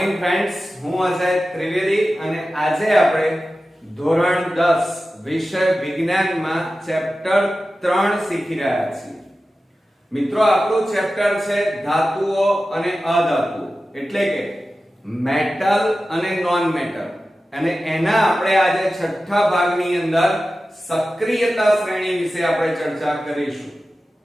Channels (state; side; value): normal; both; correlation 0.94